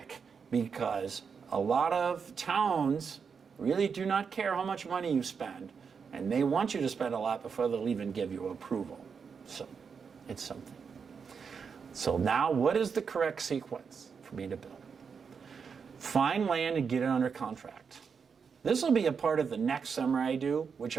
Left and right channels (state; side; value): quieter; left; 6.0 dB